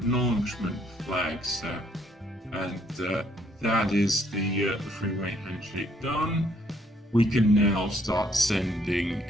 flag set, and that is the three-way handshake done. We can now start sending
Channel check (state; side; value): normal; both; correlation 0.67